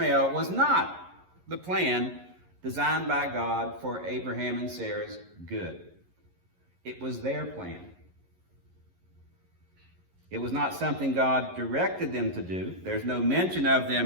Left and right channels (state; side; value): late; left; 11 ms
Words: was not the plan designed by God for Abraham and Sarah's good. It was their plan. It was not something God directed them to do. There's no mention of